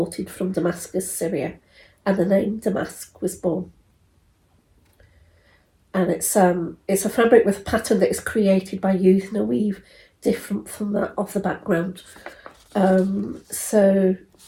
from Damascus, Syria, and the name damask was born. And it's a fabric with a pattern that is created by using a weave different from that of the background. So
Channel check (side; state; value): both; identical; correlation 1.00